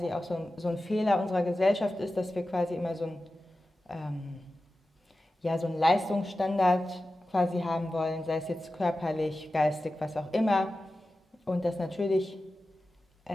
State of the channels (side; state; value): both; normal; correlation 0.94